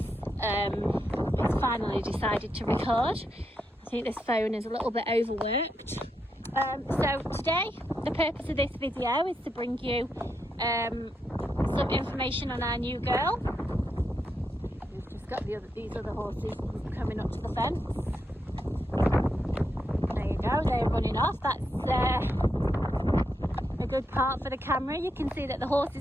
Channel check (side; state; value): both; normal; correlation 0.83